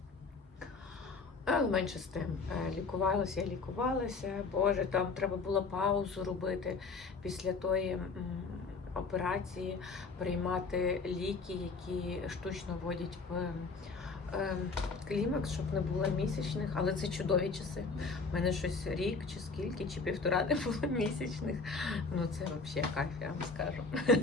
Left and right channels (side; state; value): right; quieter; 4.3 dB